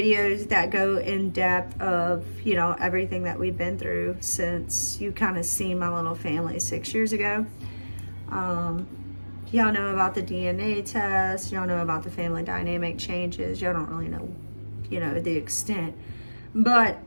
that go in depth of, everything that we've been through since you kind of seen my little family 6 years ago. Y'all know about the DNA test, y'all know about the family dynamic changes, y'all don't really know, the extent. But,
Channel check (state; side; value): inverted; both; correlation -1.00